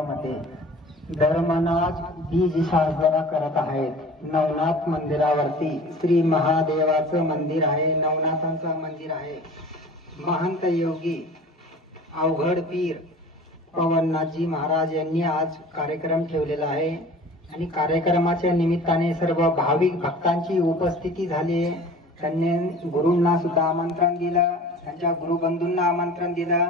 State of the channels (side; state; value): both; normal; correlation 0.43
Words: धर्मनाथ बीज साजरा करत आहेत. नवनाथ मंदिरावरती श्री महादेवाचं मंदिर आहे, नवनाथांचं मंदिर आहे. महंत योगी अवघड पीर पवननाथजी महाराज यांनी आज कार्यक्रम ठेवलेला आहे आणि कार्यक्रमाच्या निमित्ताने सर्व भाविक भक्तांची उपस्थिती झाली आहे. त्यांनी गुरूंना सुद्धा आमंत्रण दिलं, त्यांच्या गुरुबंधूंना आमंत्रण दिलं.